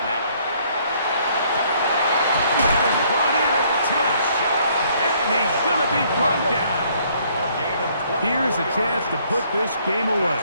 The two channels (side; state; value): both; inverted; correlation -0.64